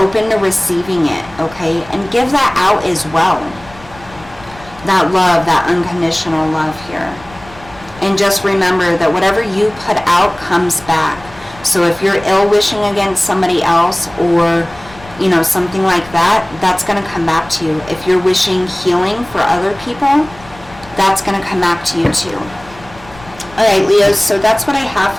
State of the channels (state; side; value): noise; left; rumble, 21 dB below the sound